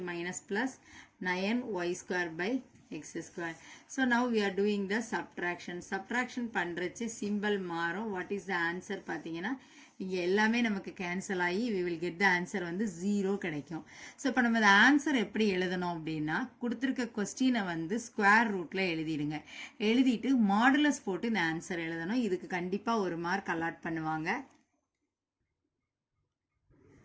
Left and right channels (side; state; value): both; identical; correlation 1.00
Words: minus plus 9y square by x square. So now we are doing the subtraction. Subtraction பண்றச்சு symbol மாறும். What is the answer பார்த்தீங்கன்னா இங்க எல்லாமே நமக்கு cancel ஆகி we will get the answer வந்து 0 கிடைக்கும். So இப்போ நம்ம இந்த ஆன்சர் எப்படி எழுதணும் அப்படின்னா கொடுத்துருக்க கொஸ்டினை வந்து ஸ்கொயர் ரூட்ல எழுதிடுங்க. எழுதிட்டு மாடுலஸ் போட்டு இந்த ஆன்சர் எழுதணும். இதுக்கு கண்டிப்பாக ஒரு மார்க் அலாட் பண்ணுவாங்க.